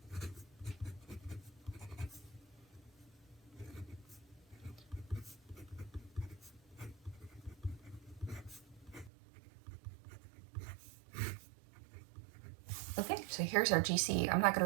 Okay, so here's our GC. I'm not going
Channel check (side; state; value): left; drops out; at 9.1 s